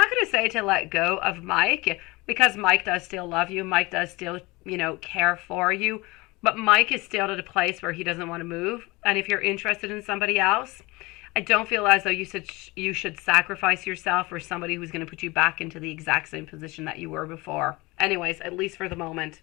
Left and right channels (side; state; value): right; quieter; 23.2 dB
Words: going to say to let go of Mike, because Mike does still love you. Mike does still, care for you. But Mike is still at a place where he doesn't want to move. And if you're interested in somebody else, I don't feel as though you should sacrifice yourself for somebody who's going to put you back into the exact same position that you were before. Anyways, at least for the moment.